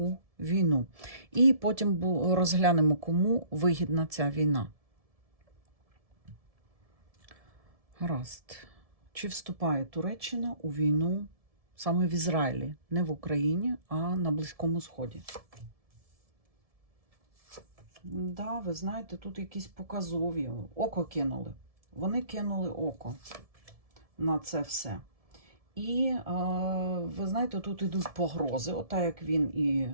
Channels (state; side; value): late; left; 1.7 ms